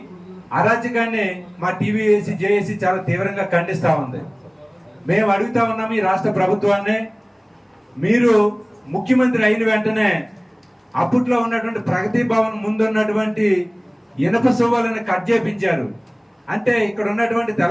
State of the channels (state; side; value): identical; both; correlation 1.00